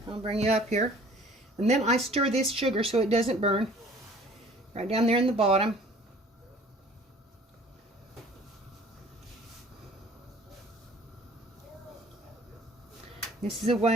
I'll bring you up here. And then I stir this sugar so it doesn't burn. Right down there in the bottom. This is the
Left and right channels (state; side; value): normal; both; correlation 0.51